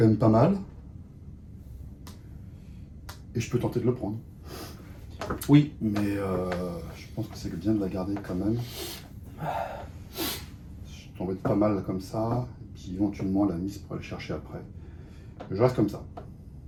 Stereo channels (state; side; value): identical; both; correlation 1.00